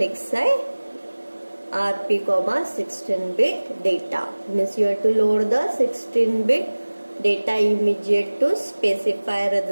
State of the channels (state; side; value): inverted; both; correlation -1.00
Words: RP 16-bit data means you have to load the 16-bit data immediate to specify